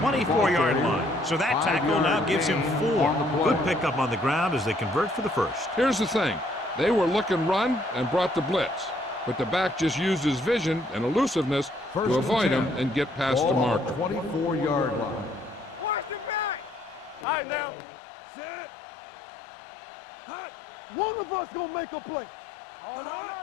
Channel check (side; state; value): right; drops out; at 17.2 s